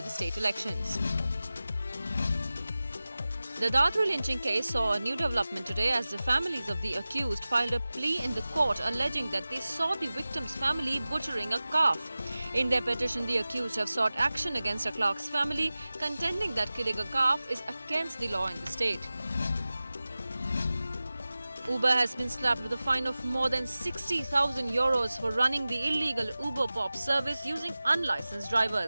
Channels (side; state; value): both; inverted; correlation -0.97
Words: the state elections. The Dadru lynching case saw a new development today as the families of the accused filed a plea in the court alleging that they saw the victim's family butchering a calf. In their petition, the accused have sought action against a clerk's family, contending that killing a calf is against the law in the state. Uber has been slapped with a fine of more than 60,000 euros for running the illegal Uber Pop service using unlicensed